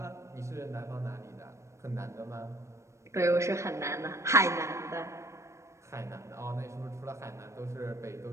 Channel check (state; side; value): late; left; 0.14 ms